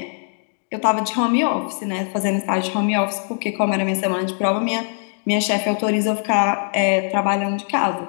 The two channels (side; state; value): right; silent; 57 dB below the other